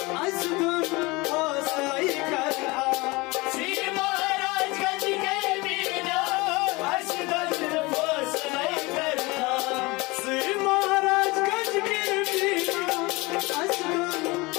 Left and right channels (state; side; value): quieter; right; 24.0 dB